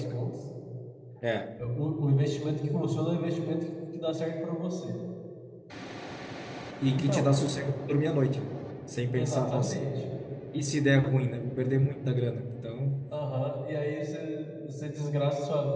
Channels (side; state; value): both; identical; correlation 1.00